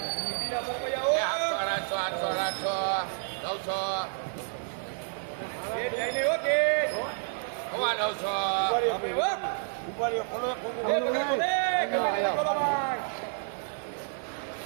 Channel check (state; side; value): silent; left; 58 dB below the other